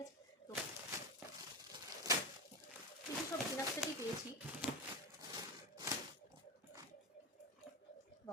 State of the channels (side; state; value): both; normal; correlation 0.18